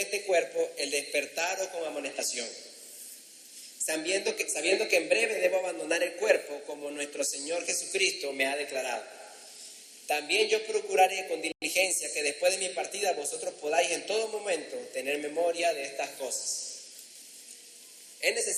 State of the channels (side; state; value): both; identical; correlation 1.00